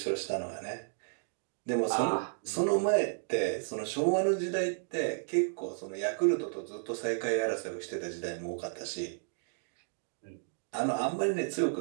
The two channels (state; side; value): silent; left; digital silence